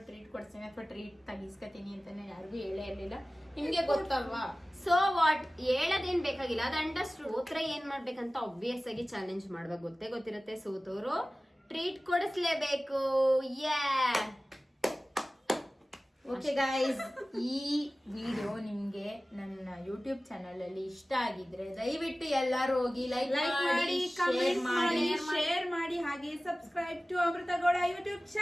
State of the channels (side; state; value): both; normal; correlation 0.97